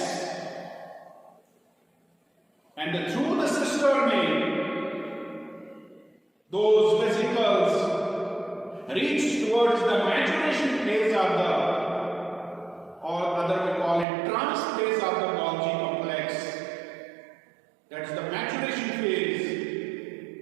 And through the cisternae, those vesicles reach towards the maturation phase of the, or other we call it transphase of the Golgi complex. That's the maturation phase.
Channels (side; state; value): left; drops out; at 14.1 s